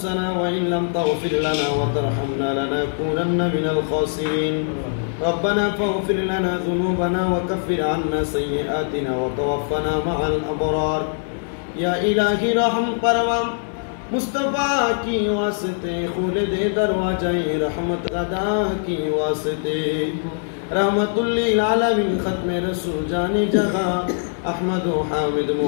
وإن لم تغفر لنا وترحمنا لنكونن من الخاسرين. ربنا فاغفر لنا ذنوبنا وكفر عنا سيئاتنا وتوفنا مع الأبرار. या इलाही रहम परवम मुस्तफ़ा की वास्ते खुल दे दरवाज़े रहमत अदा की वास्ते रहमतुल्लिल आलमीन खत्म रसूल जाने जहां अहमद हामिद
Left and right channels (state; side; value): silent; right; 64 dB below the other